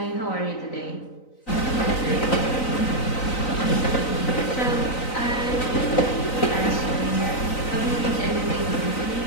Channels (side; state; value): right; late; 3.9 ms